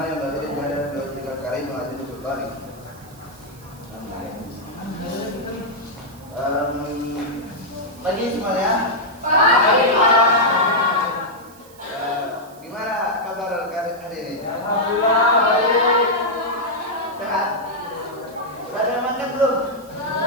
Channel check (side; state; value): right; noise; hiss, 24 dB below the sound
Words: yang bagi pada dua karim wa adil sultani. Pagi semuanya. Pagi. Gimana kabar hari ini? Alhamdulillah baik. Sehat? Sudah ada yang makan belum?